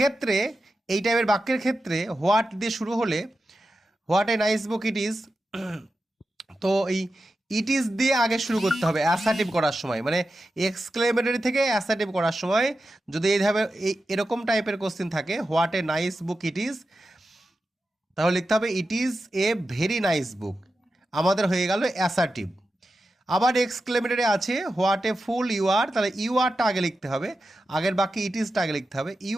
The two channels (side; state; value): both; normal; correlation 0.91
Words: এই টাইপের বাক্যের ক্ষেত্রে হোয়াট দিয়ে শুরু হলে what a nice book it is, তো এই ইট ইজ দিয়ে আগে শুরু করতে হবে অ্যাসার্টিভ করার সময়, মানে এক্সক্লেমেটরি থেকে অ্যাসার্টিভ করার সময় যদি এইভাবে এরকম টাইপের কোশ্চেন থাকে what a nice book it is, তাহলে লিখতে হবে it is a very nice book. আমাদের হয়ে গেল অ্যাসার্টিভ। আবার এক্সক্লেমেটরি আছে হোয়াট এ ফুল ইউ আর, তাহলে ইউ আরটা আগে লিখতে হবে, আগের বাকি ইট ইজটা আগে লিখতে হবে, ইউ